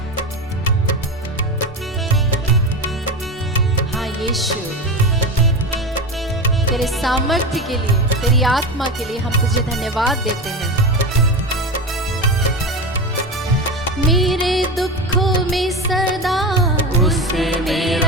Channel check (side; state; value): both; normal; correlation 0.22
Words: हाँ यीशु, तेरे सामर्थ्य के लिए, तेरी आत्मा के लिए हम तुझे धन्यवाद देते हैं। मेरे दुखों में सदा उससे